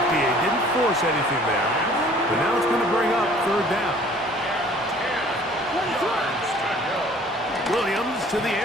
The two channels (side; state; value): both; normal; correlation 0.53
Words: Didn't force anything there. But now it's going to bring up third down. Williams to the